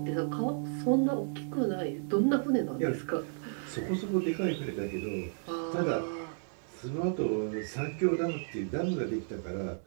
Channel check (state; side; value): silent; left; digital silence